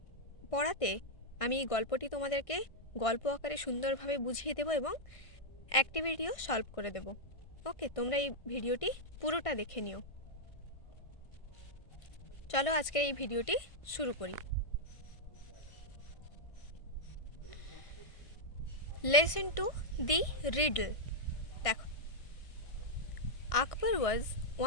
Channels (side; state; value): right; late; 1.5 ms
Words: পড়াতে আমি এই গল্পটি তোমাদেরকে গল্প আকারে সুন্দরভাবে বুঝিয়ে দেব এবং অ্যাক্টিভিটিও সলভ করে দেব। ওকে, তোমরা এই ভিডিওটি পুরোটা দেখে নিও। চলো আজকের এই ভিডিওটি শুরু করি। Lesson 2 the riddle. দেখো, Akbar was